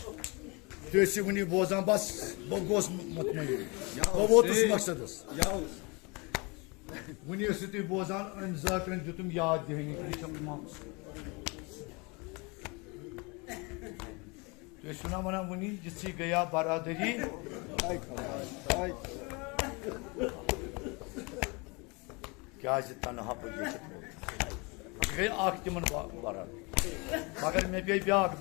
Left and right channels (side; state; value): right; quieter; 28.8 dB